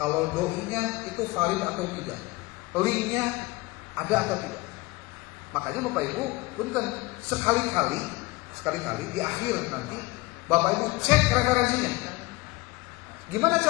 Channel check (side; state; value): right; quieter; 22.2 dB